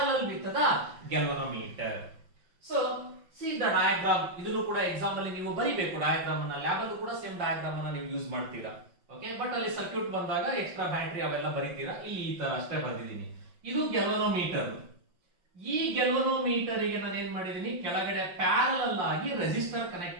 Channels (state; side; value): late; left; 5.6 ms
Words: with the galvanometer. So, see the diagram. ಇದನ್ನು ಕೂಡ exam ಅಲ್ಲಿ ನೀವು ಬರಿಬೇಕು. Diagram ಅನ್ನ lab ಅಲ್ಲೂ ಕೂಡ same diagram ಅನ್ನ ನೀವು ಯೂಸ್ ಮಾಡ್ತೀರಾ. ಓಕೆ, ಬಟ್ ಅಲ್ಲಿ ಸರ್ಕ್ಯೂಟ್ ಬಂದಾಗ ಎಕ್ಸ್ಟ್ರಾ ಬ್ಯಾಟರಿ ಅವೆಲ್ಲ ಬರೀತೀರಾ. ಇಲ್ಲಿ ಈ ತರ ಅಷ್ಟೇ ಬರ್ದಿದ್ದೀನಿ. ಇದು ಗ್ಯಾಲ್ವನೋಮೀಟರ್. ಈ ಗ್ಯಾಲ್ವನೋಮೀಟರ್ ಗೆ ನಾನು ಏನ್ ಮಾಡಿದೀನಿ, ಕೆಳಗಡೆ ಪ್ಯಾರಲಲ್ ಆಗಿ ರೆಸಿಸ್ಟರ್